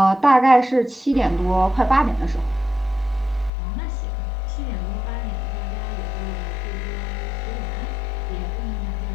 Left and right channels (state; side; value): drops out; right; at 3.5 s